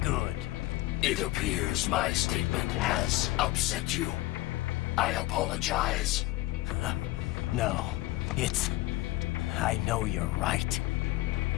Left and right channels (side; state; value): right; quieter; 17.6 dB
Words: good. It appears my statement has upset you. I apologize. No, it's... I know you're right.